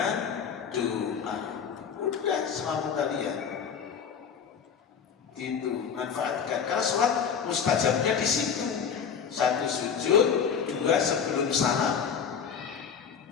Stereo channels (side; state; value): right; quieter; 7.0 dB